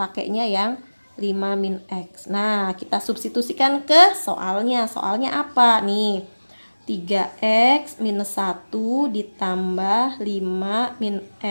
yang 5 min X. Nah, kita substitusikan ke soalnya. Soalnya apa nih? 3x minus 1 ditambah 5 min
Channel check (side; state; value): both; inverted; correlation -1.00